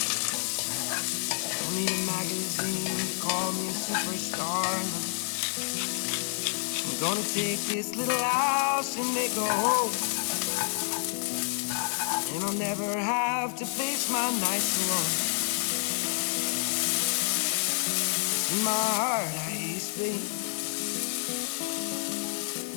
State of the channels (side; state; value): right; silent; 59 dB below the other